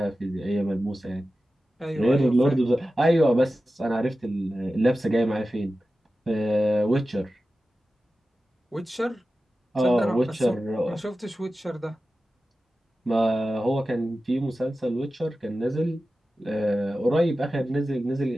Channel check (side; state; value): both; normal; correlation 0.94